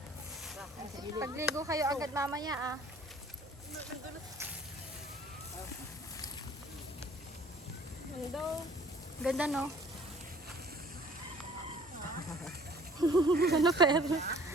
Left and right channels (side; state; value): both; normal; correlation 0.53